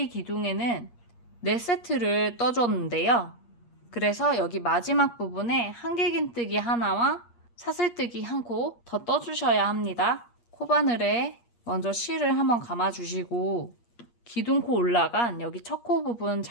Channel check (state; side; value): late; right; 8.5 ms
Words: 기둥에는 4세트를 떠줬는데요. 그래서 여기 마지막 부분에 한길긴뜨기 하나와 사슬뜨기 한 코 더 떠주셔야 합니다. 코바늘에 먼저 실을 한번 감아주시고 기둥코 올라간 여기 첫 코 부분